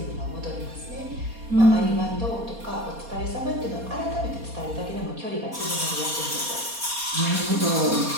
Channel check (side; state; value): left; late; 4.2 ms